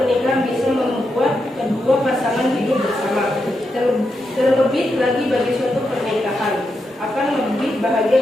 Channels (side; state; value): both; normal; correlation 0.85